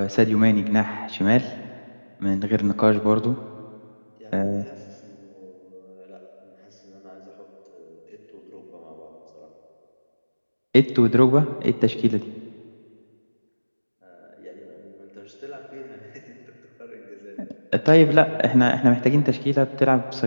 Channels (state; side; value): inverted; both; correlation -1.00